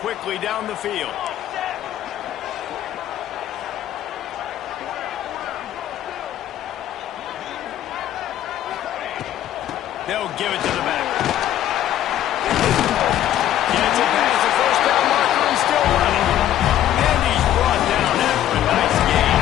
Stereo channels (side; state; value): right; quieter; 12.1 dB